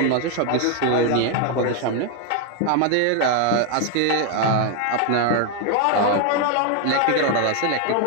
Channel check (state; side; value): different; both; correlation 0.01